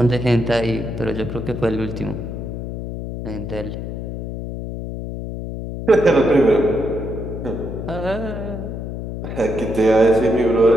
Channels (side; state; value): left; noise; hum, 7 dB below the sound